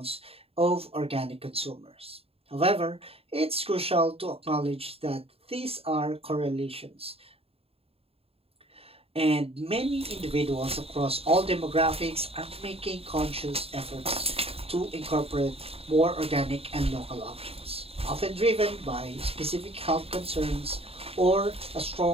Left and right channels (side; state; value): left; late; 0.28 ms